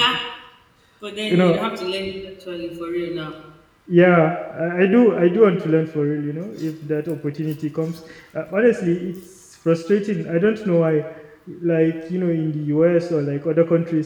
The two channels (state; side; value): identical; both; correlation 1.00